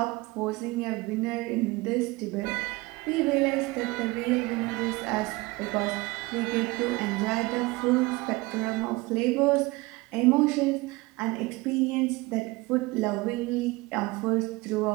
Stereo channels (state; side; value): quieter; left; 22.7 dB